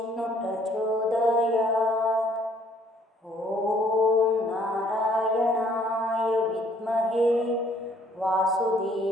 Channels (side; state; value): both; normal; correlation 0.62